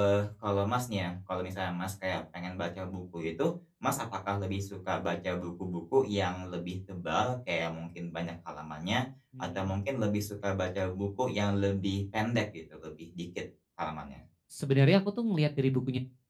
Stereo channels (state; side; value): identical; both; correlation 1.00